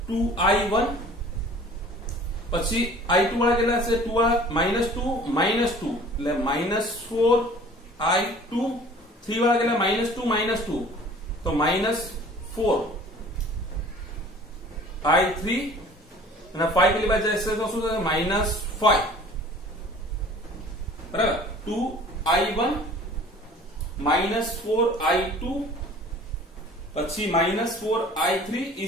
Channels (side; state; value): both; normal; correlation 0.48